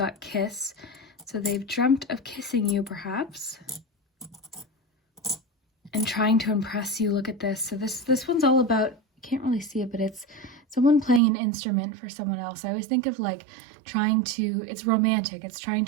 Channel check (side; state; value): left; drops out; at 11.2 s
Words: kiss. So they've dreamt of kissing you, perhaps, and trying to impress you. Look at this. So this one's all about, you can't really see it, but it's someone playing an instrument for someone else. I always think of like it's romantic. It's trying